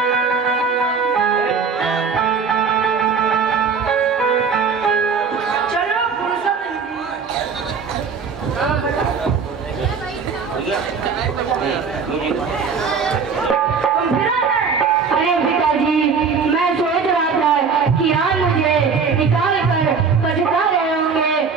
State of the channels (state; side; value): quieter; left; 5.6 dB